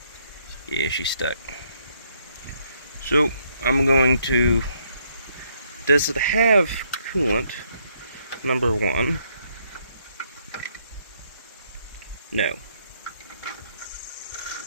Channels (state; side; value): inverted; both; correlation -0.71